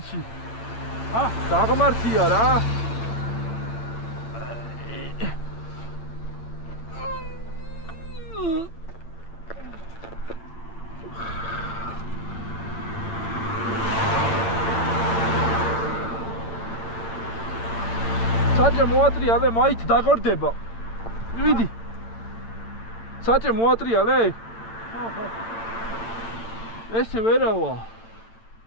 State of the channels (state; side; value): late; right; 9.0 ms